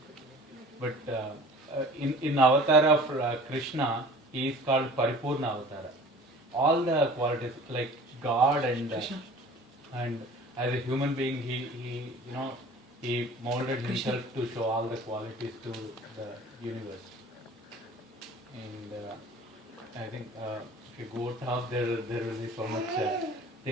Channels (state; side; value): normal; both; correlation 0.45